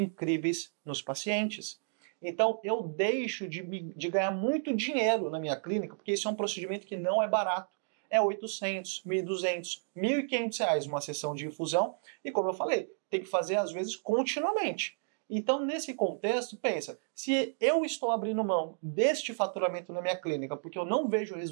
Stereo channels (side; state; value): left; silent; digital silence